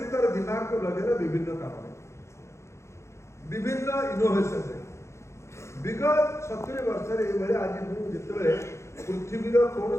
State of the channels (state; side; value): late; right; 0.13 ms